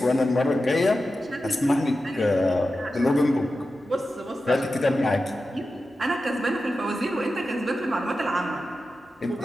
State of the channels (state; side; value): normal; both; correlation 0.92